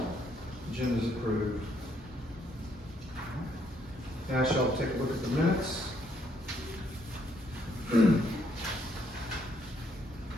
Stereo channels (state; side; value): normal; both; correlation 0.70